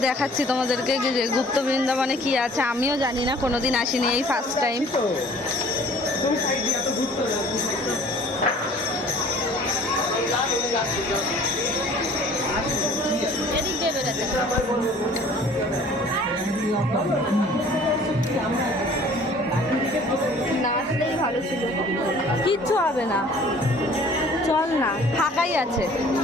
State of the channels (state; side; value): normal; both; correlation 0.52